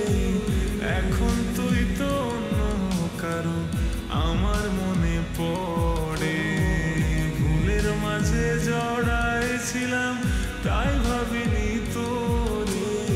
এখন তুই তো অন্য কারো আমার মনে পড়ে। ভুলের মাঝে জড়াইছিলাম তাই ভাবিনি তোরে,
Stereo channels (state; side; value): identical; both; correlation 1.00